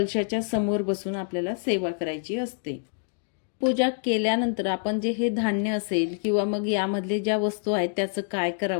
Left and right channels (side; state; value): right; silent; digital silence